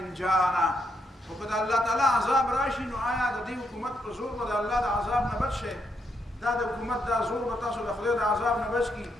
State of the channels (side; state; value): both; normal; correlation 0.79